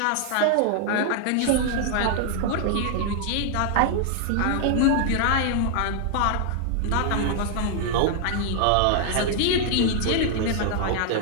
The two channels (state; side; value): different; both; correlation 0.00